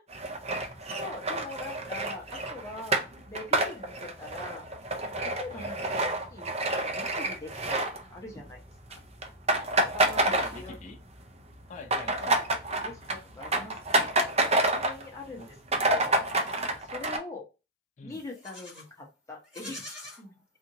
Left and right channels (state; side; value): normal; both; correlation -0.16